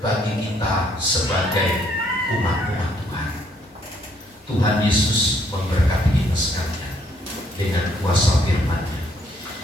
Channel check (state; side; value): normal; both; correlation 0.68